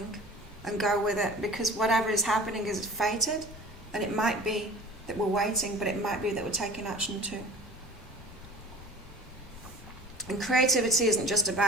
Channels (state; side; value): normal; both; correlation 0.42